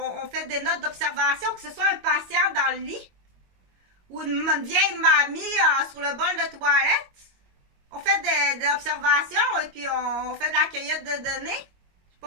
fait des notes d'observation, que ce soit un patient dans le lit ou une vieille mamie sur le bol de toilette. On fait des observations et puis on fait de la cueillette de données. J'ai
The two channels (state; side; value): late; left; 22 ms